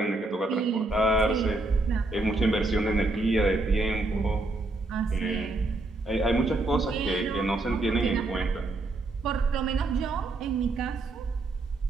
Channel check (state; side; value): quieter; left; 3.0 dB